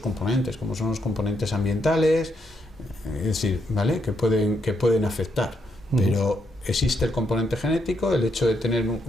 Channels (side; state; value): both; normal; correlation 0.78